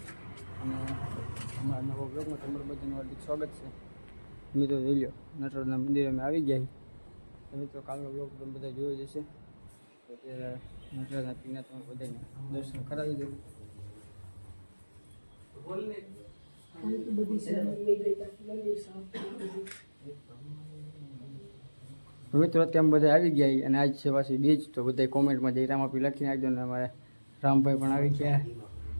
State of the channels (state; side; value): inverted; both; correlation -1.00